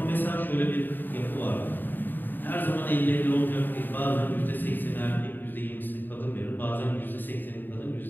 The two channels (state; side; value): late; right; 0.091 ms